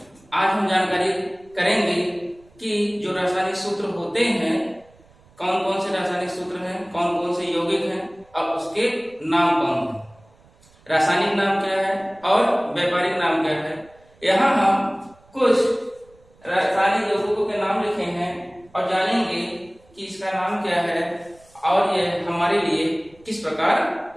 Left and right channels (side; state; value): right; noise; rumble, 29 dB below the sound